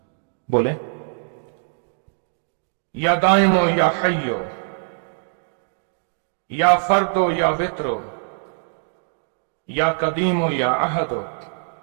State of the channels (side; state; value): left; silent; digital silence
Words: बोले या दाइमो या हय्यो, या फर्दो या वित्रो, या कदीमो या अहदो,